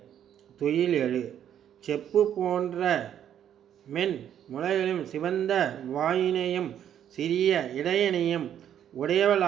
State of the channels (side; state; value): left; quieter; 9.9 dB